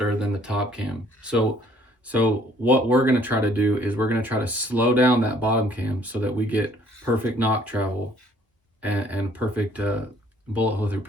than the top cam. So what we're going to try to do is we're going to try to slow down that bottom cam so that we get perfect knock travel and perfect bullet hole through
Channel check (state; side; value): normal; both; correlation 0.60